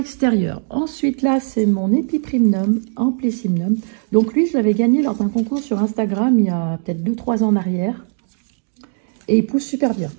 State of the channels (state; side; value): silent; left; 63 dB below the other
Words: Ensuite, là, c'est mon Epiprimnum Amplissimnum. Donc lui, je l'avais gagné lors d'un concours sur Instagram il y a peut-être 2-3 ans en arrière. Et il pousse super bien.